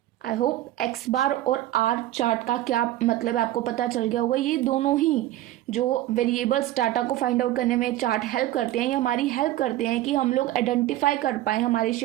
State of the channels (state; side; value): quieter; left; 14.6 dB